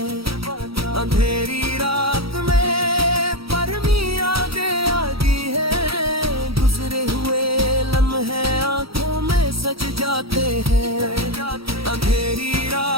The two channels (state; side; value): late; left; 0.76 ms